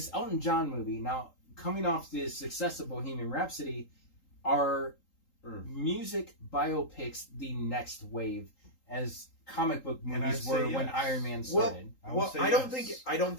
Elton John movie, now coming off the success of Bohemian Rhapsody, are music biopics the next wave, as comic book movies were when Iron Man started? I don't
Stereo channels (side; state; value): right; late; 3.8 ms